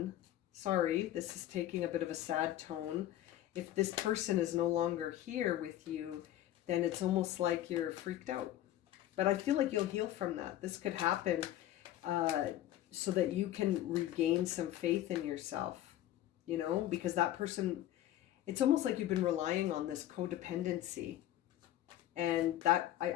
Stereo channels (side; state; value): right; quieter; 13.2 dB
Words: sorry, this is taking a bit of a sad tone. If this person is no longer here with you, then it's almost like you're freaked out. But I feel like you'll heal from that. This could happen so that you can regain some faith in yourself, you know, because that person, it's almost like you've been relying on this codependency. And that,